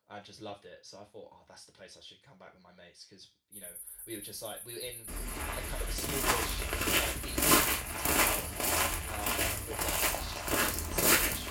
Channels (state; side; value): identical; both; correlation 1.00